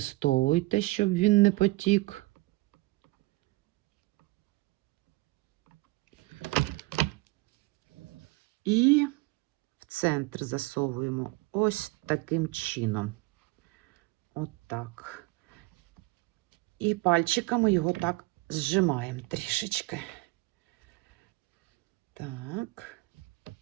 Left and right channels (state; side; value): quieter; left; 21.5 dB